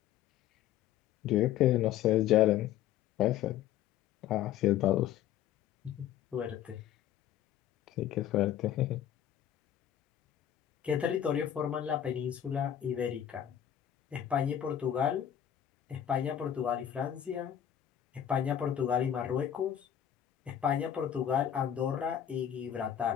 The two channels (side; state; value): right; quieter; 10.5 dB